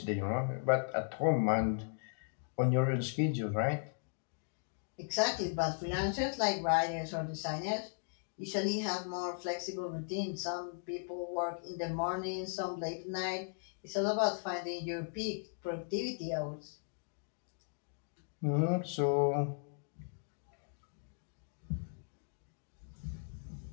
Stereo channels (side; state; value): right; silent; digital silence